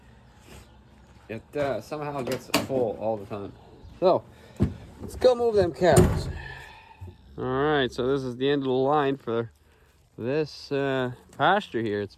it somehow gets full all the time. So, let's go move them cows. Alright, so this is the end of the line for this pasture here. It's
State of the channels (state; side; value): identical; both; correlation 1.00